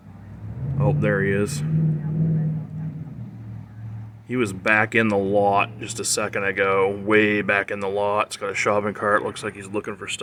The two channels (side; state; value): both; identical; correlation 1.00